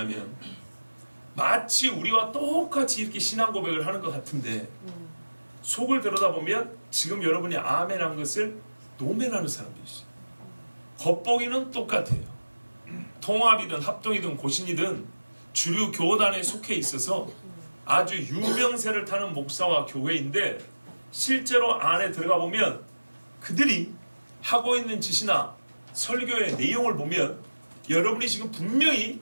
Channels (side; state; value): both; inverted; correlation -1.00